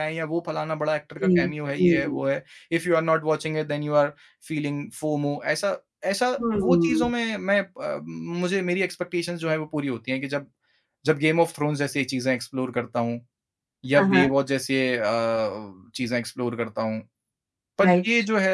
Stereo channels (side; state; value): both; identical; correlation 1.00